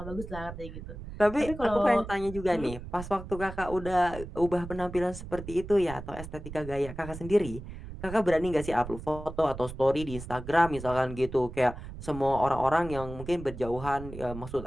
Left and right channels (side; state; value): right; noise; rumble, 11 dB below the sound